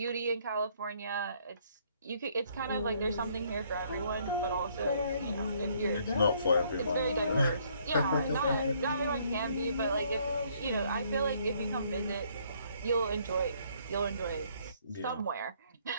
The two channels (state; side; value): inverted; both; correlation -0.66